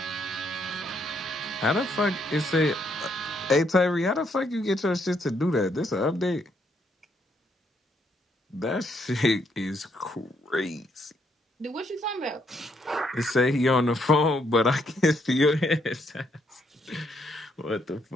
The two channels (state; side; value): normal; both; correlation 0.73